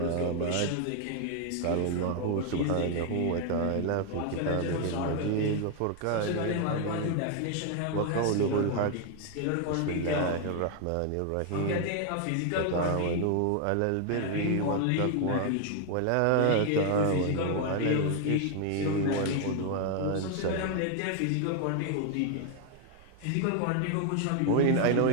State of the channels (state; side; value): different; both; correlation 0.00